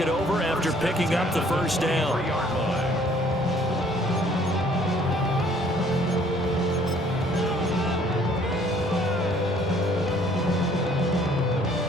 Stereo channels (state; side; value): normal; both; correlation 0.59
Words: over after picking up the 1st down.